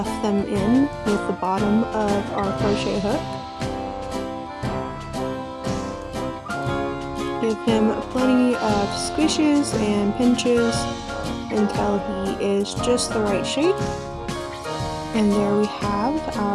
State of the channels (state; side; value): identical; both; correlation 1.00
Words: them in with the bottom of our crochet hook. Give him plenty of squishes and pinches until he is just the right shape. And there we have